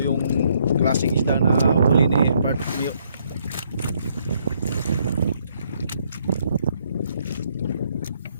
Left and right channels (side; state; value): both; inverted; correlation -0.70